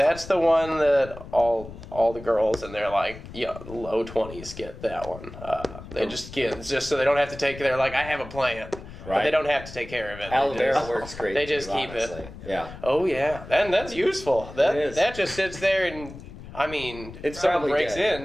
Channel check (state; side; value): noise; left; rumble, 14 dB below the sound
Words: the one that all the girls in their low 20s get that one. They just get just so they don't have to take. They're like, I have a plant, but Right. they don't have to take care of it. Aloe vera works great. They just too, keep it. honestly. Yeah. Oh yeah, and that's useful. It is. That just sits there, and I mean, It's if someone probably breaks dead.